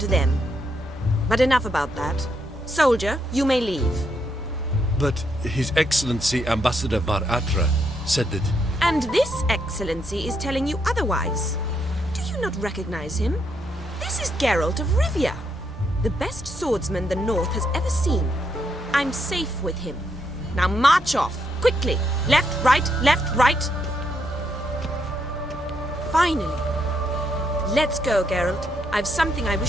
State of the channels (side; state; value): both; normal; correlation 0.77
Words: them? But enough about that. Soldier, you may leave. But His Excellency Ambassador Var Atra said that... And this excellency is telling you otherwise. Do you not recognize him? This is Geralt of Rivia, the best swordsman the North has ever seen. I'm safe with him. Now march off, quickly. Left, right. Finally. Let's go, Geralt. I've something I